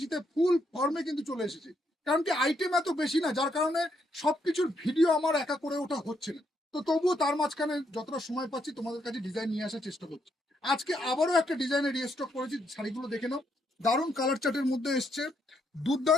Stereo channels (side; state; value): both; normal; correlation 0.76